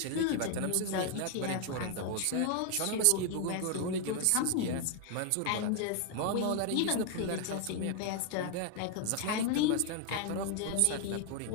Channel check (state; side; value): different; both; correlation 0.00